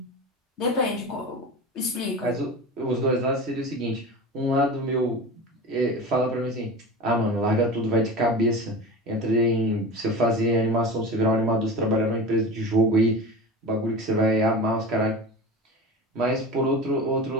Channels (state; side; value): normal; both; correlation 0.31